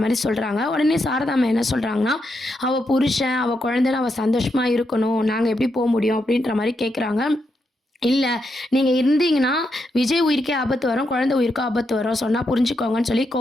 மாரி சொல்றாங்க. உடனே சாரதாம்மா என்ன சொல்றாங்கன்னா, அவ புருஷன், அவ குழந்தைன்னு அவ சந்தோஷமா இருக்கணும். நாங்க எப்படி முடியும் அப்படின்ற மாரி கேட்குறாங்க. இல்ல. நீங்க இருந்தீங்கன்னா, விஜய் உயிருக்கே ஆபத்து வரும். குழந்தை உயிருக்கும் ஆபத்து வரும். சொன்னா புரிஞ்சுக்கோங்கன்னு சொல்லி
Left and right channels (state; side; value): normal; both; correlation 0.82